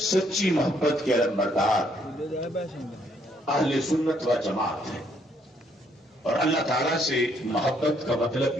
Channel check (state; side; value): normal; both; correlation 0.69